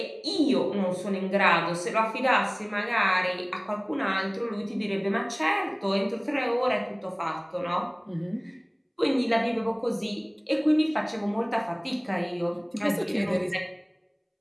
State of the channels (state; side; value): identical; both; correlation 1.00